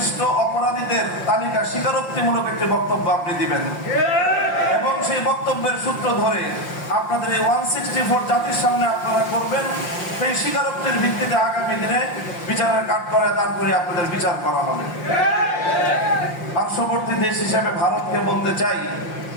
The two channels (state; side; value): late; right; 5.7 ms